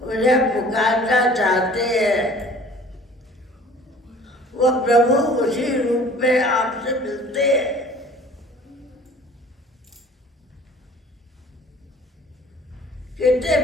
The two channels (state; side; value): normal; both; correlation 0.49